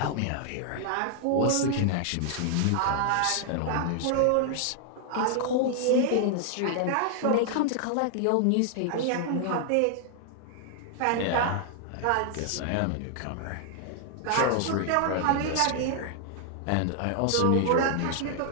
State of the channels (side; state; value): both; different; correlation 0.00